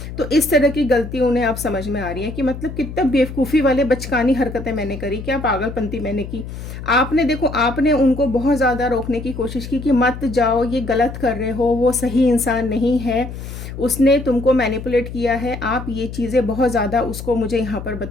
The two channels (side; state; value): left; noise; hum, 10 dB below the sound